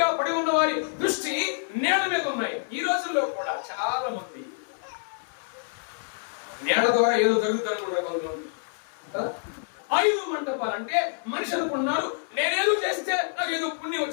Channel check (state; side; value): silent; right; 60 dB below the other